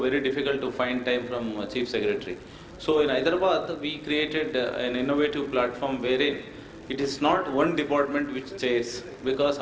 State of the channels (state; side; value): identical; both; correlation 1.00